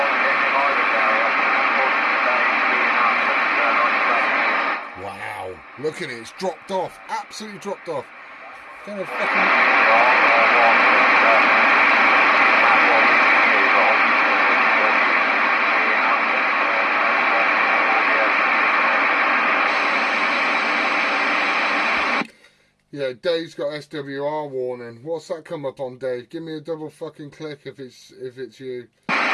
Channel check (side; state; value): both; identical; correlation 1.00